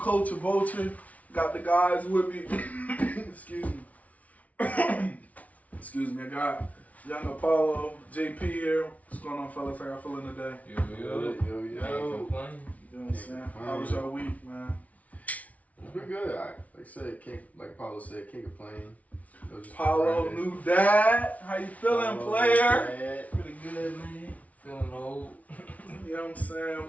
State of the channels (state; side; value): late; right; 0.069 ms